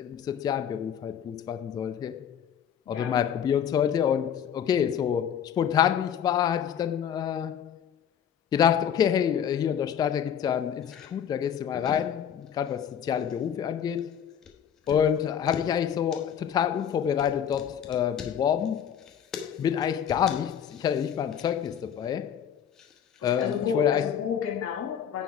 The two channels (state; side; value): quieter; right; 8.7 dB